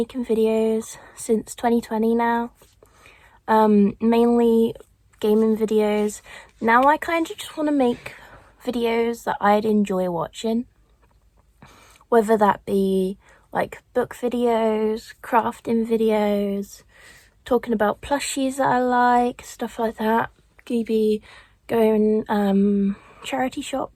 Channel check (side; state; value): both; identical; correlation 1.00